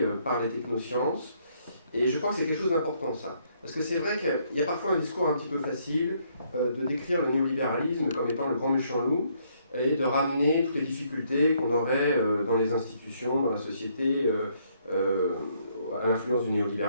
par les technosciences. Et je crois que c'est quelque chose d'important, ça. Parce que c'est vrai qu'il y a parfois un discours un petit peu facile de décrire le néolibéralisme comme étant le grand méchant loup et de ramener toutes les difficultés qu'on aurait dans les institutions, dans la société, à l'influence du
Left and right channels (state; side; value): inverted; both; correlation -0.70